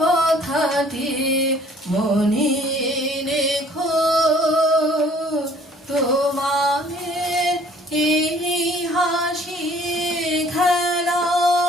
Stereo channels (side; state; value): both; normal; correlation 0.56